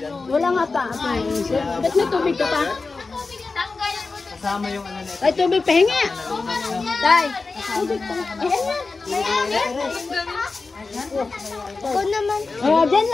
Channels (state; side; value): quieter; right; 4.0 dB